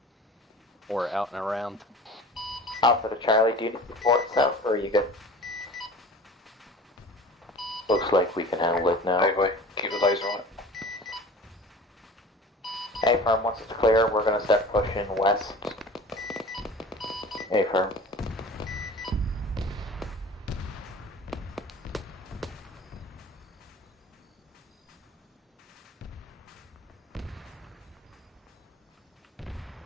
Or out and around. Alpha to Charlie, do you need support south or are you good? Looks like we can handle it now. Hey boy, keep the laser on it. A firm, once it's clear, we're gonna start pushing west. A firm.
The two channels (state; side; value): normal; both; correlation 0.41